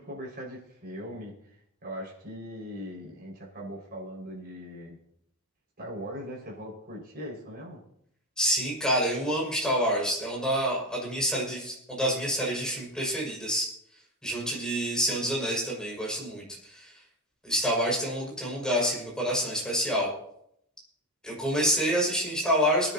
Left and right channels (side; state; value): both; normal; correlation 0.16